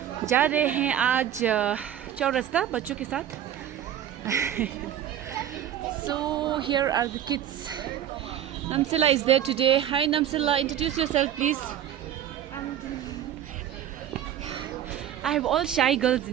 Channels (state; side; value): quieter; left; 10.6 dB